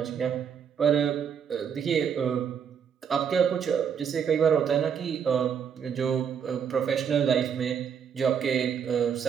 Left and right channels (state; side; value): quieter; left; 7.5 dB